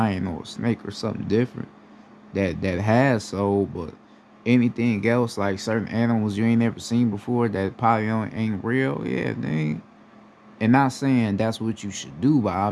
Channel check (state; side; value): identical; both; correlation 1.00